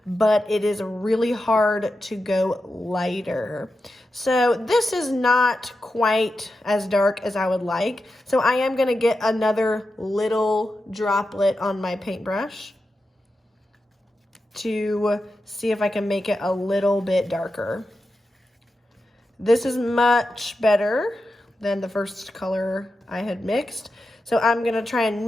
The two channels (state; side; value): normal; both; correlation 0.90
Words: but it is really hard to go lighter. So this is not quite as dark as I would like. So I am gonna get another little droplet on my paintbrush to see if I can make it a little bit darker. This is much better than the first color I had mixed. So I'm gonna try and